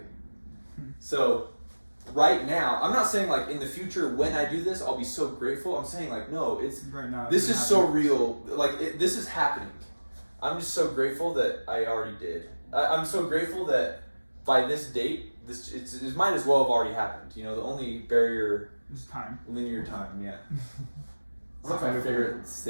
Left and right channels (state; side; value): inverted; both; correlation -1.00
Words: So right now, I'm not saying like in the future when I do this I'll be so grateful. I'm saying like no, it's right now. This is so real. Like this is happening. I'm just so grateful that I already did. I'm so grateful that by this date, it might as well have already happened. The only barrier is time. Linear time. Yeah. That's my favorite